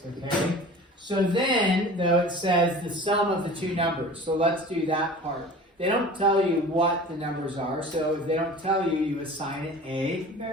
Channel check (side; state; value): both; normal; correlation 0.40